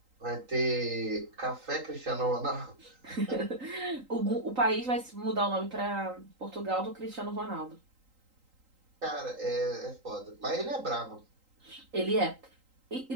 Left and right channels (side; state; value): left; late; 3.8 ms